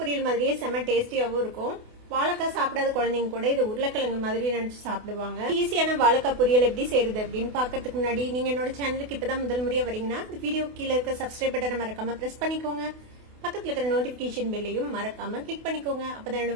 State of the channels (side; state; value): left; late; 28 ms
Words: பொரியல் மாதிரியே செம டேஸ்டியாவும் இருக்கும். வாழைக்காய் சாப்பிடாத குழந்தைங்க கூட இது உருளைக்கிழங்கு மாதிரி நினைச்சு சாப்பிடுவாங்க. ஈஸியான வாழைக்காய் பொரியல் எப்படி செய்யறது அப்படின்னு பாக்கிறதுக்கு முன்னாடி நீங்க என்னோட சேனலுக்கு இப்பதான் முதல் முறையா வரீங்கன்னா இந்த வீடியோ கீழே இருக்க சப்ஸ்கிரைப் பட்டனை மறக்காம பிரஸ் பண்ணிக்கோங்க. பக்கத்துல இருக்கிற நோட்டிபிகேஷன் பெல்லையும் மறக்காம கிளிக் பண்ணிக்கோங்க. அப்பதான்